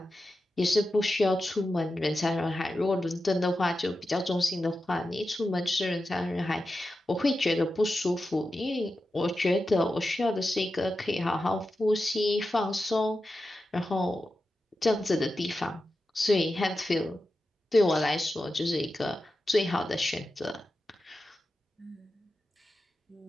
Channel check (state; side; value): normal; both; correlation 0.91